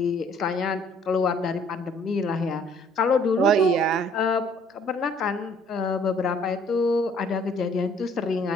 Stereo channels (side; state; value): both; normal; correlation 0.59